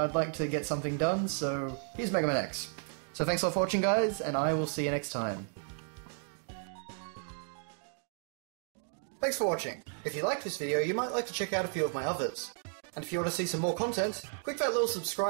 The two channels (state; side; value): silent; left; 55 dB below the other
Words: like to get something done, so here's Mega Man X. So thanks a lot for watching, guys, and I will see you next time. Thanks for watching. If you liked this video, you might like to check out a few of my others. And if you want to see some more content, click that little